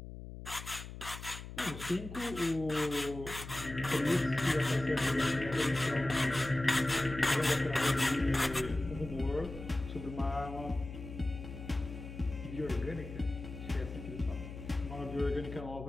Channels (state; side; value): noise; left; hum, 11 dB below the sound